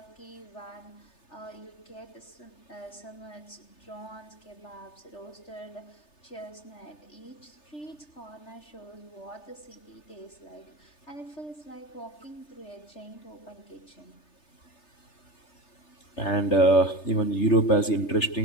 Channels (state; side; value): late; right; 3.3 ms